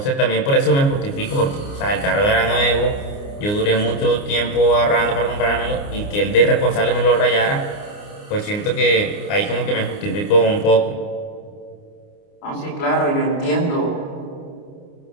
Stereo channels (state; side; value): late; right; 29 ms